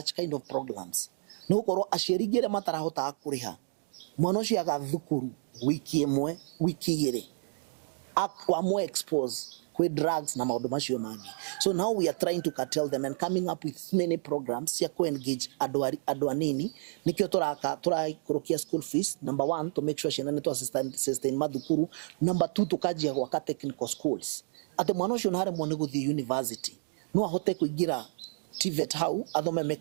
kind of programs. Ni ukorwo aciarigire matarahota kuriha. Mwana ucio agathukuru wiki imwe, wiki igire. Akwa more exposed with drugs na maundu macio mangi. So now we are trying to curtail them and coming up with many programs ya ku engage adu anini nikio kurokia school fees. Number 1, to make sure she nane to sustain madukuru. Number 2, tukajia gwaka technical schools. Ate mwana ucio nare mwone guthi university no ahote kuigira TVET hau athome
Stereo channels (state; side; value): silent; left; digital silence